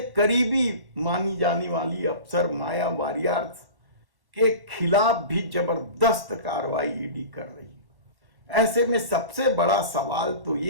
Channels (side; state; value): left; late; 1.1 ms